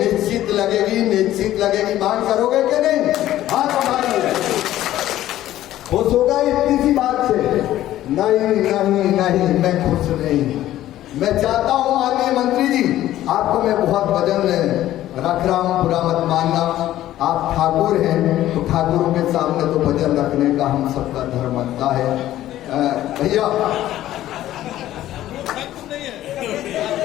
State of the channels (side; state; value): right; quieter; 13.7 dB